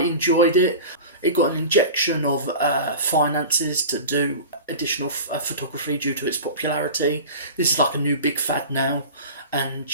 it. It got an injection of finances to do additional photography due to its popularity. This is like a new big fad now, and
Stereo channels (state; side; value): inverted; both; correlation -0.34